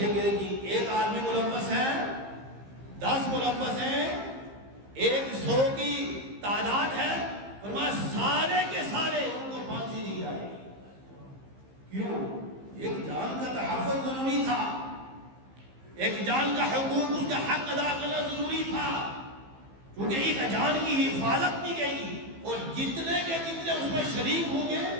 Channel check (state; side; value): late; left; 15 ms